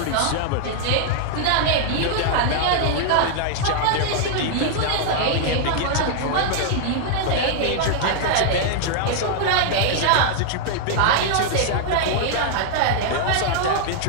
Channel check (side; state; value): both; different; correlation 0.00